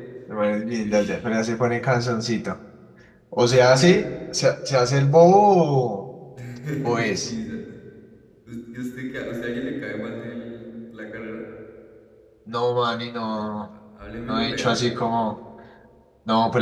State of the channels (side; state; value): both; identical; correlation 1.00